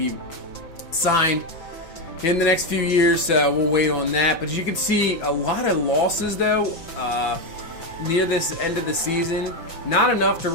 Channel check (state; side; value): late; right; 6.0 ms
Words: signed in the next few years, so we'll wait on that. But as you can see, a lot of losses, though, near this end of the season. Not enough to